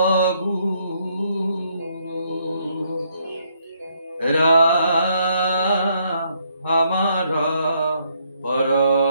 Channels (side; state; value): both; inverted; correlation -0.71